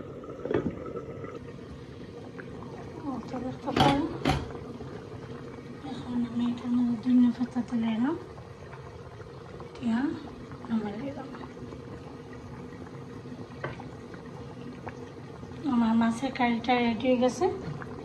এখন আমি এটার মধ্যে ধনিয়া পাতা তুলে এলাম, দিয়া নামাই দিলাম। আমার মাছের কারিটা রেডি হয়ে গেছে।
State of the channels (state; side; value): identical; both; correlation 1.00